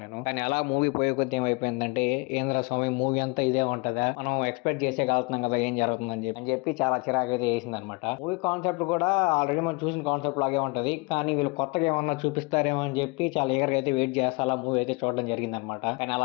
నేను. కానీ అలా మూవీ పోయే కొద్ది ఏమైపోయిందంటే, ఏంద్ర స్వామి మూవీ అంతా ఇదే ఉంటదా, మనం ఎక్స్పెక్ట్ చేసే వెళ్తున్నాం కదా ఏం జరుగుతుందని చెప్పి చాలా చిరాకు అయితే వేసింది అనమాట. మూవీ కాన్సెప్ట్ కూడా ఆల్రెడీ మనం చూసిన కాన్సెప్ట్ లాగే ఉంటది, కానీ వీళ్ళు కొత్తగా ఏమన్నా చూపిస్తారేమో అని చెప్పి చాలా ఈగర్గా అయితే వెయిట్ చేస్తా అలా మూవీ అయితే చూడడం జరిగింది అనమాట. కానీ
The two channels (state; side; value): quieter; right; 28.4 dB